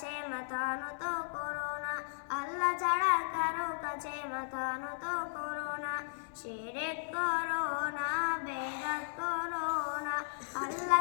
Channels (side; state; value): right; silent; digital silence